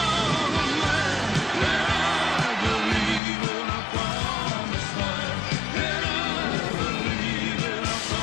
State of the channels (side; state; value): right; drops out; at 3.2 s